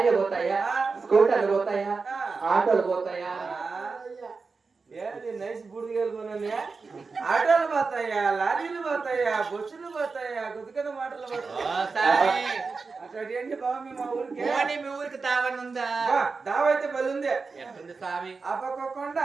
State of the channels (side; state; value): left; quieter; 4.5 dB